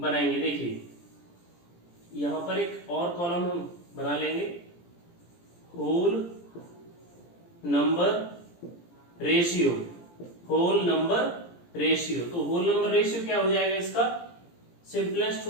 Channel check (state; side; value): late; right; 17 ms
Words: देखिए यहां पर एक और कॉलम हम बना लेंगे, whole number ratio, whole number ratio. तो होल नंबर रेशियो क्या हो जाएगा इसका, सिंपलेस्ट